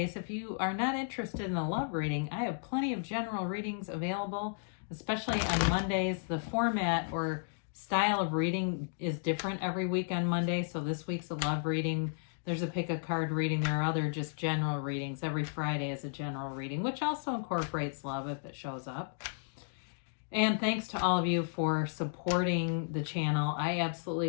if you are not interested in a love reading, I have plenty of general readings available, especially on Mondays. The format or style of reading is different every week on Monday. So this week's a love reading. There's a pick a card reading. There are other just general readings. Every Friday is a general reading, which also incorporates love if it shows up. And thanks to all of you for supporting the channel. I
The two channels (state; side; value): silent; right; digital silence